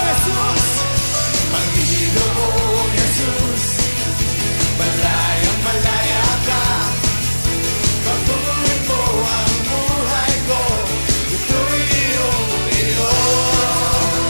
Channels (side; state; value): both; inverted; correlation -1.00